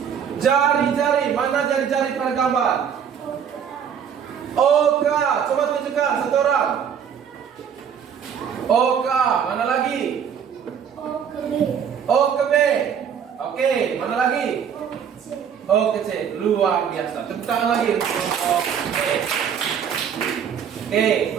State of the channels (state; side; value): quieter; left; 7.9 dB